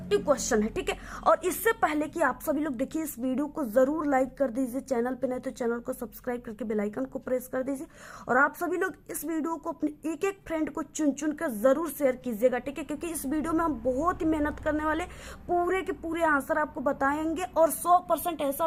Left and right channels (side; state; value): both; identical; correlation 1.00